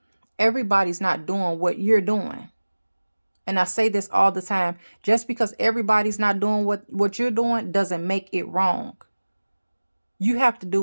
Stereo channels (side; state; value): both; inverted; correlation -1.00